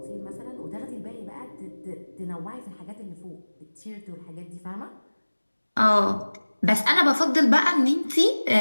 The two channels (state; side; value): inverted; both; correlation -1.00